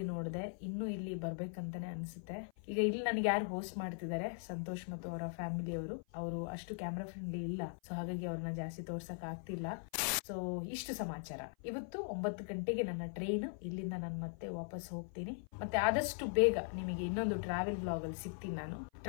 ನೋಡಿದೆ. ಇನ್ನು ಇಲ್ಲಿ ಬರ್ಬೇಕಂತಾನೆ ಅನ್ಸುತ್ತೆ. ಈಗ ಇಲ್ಲಿ ನನಗೆ ಯಾರು ಹೋಸ್ಟ್ ಮಾಡ್ತಿದ್ದಾರೆ, ಸಂತೋಷ್ ಮತ್ತು ಅವರ ಫ್ಯಾಮಿಲಿಯವರು. ಅವರು ಅಷ್ಟು ಕ್ಯಾಮ್ರಾ ಫ್ರೆಂಡ್ಲಿ ಇಲ್ಲ, ಸೊ ಹಾಗಾಗಿ ಅವ್ರನ್ನ ಜಾಸ್ತಿ ತೋರ್ಸಕ್ ಆಗ್ತಿಲ್ಲ. ಸೊ ಇಷ್ಟು ಸಮಾಚಾರ. ಇವತ್ತು 9 ಗಂಟೆಗೆ ನನ್ನ ಟ್ರೈನ್. ಇಲ್ಲಿಂದ ನಾನು ಮತ್ತೆ ವಾಪಸ್ ಹೋಗ್ತೀನಿ. ಮತ್ತೆ ಆದಷ್ಟು ಬೇಗ ನಿಮಗೆ ಇನ್ನೊಂದು ಟ್ರಾವೆಲ್ ಬ್ಲಾಗ್ ಅಲ್ಲಿ ಸಿಗ್ತೀನಿ. ನಾನು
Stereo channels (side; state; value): right; silent; 51 dB below the other